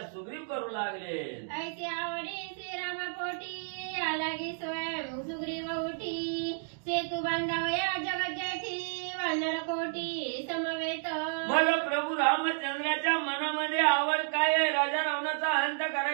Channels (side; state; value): left; silent; digital silence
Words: सुग्रीव करू लागले. ऐसी आवडी श्रीरामापोटी आलागी स्वयं सुग्रीव उठी, सेतू बांधावया जगत जेठी वानर कोटी समवेत. मग प्रभू रामचंद्राच्या मनामध्ये आवड काय आहे? राजा रावणाचा अंत